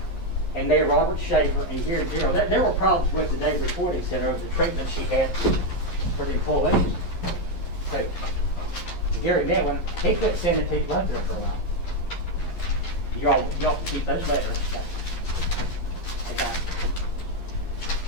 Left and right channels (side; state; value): right; late; 11 ms